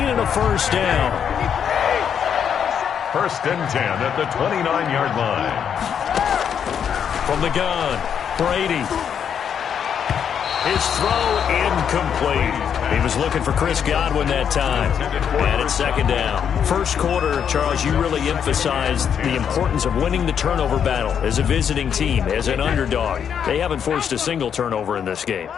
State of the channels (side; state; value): right; quieter; 8.0 dB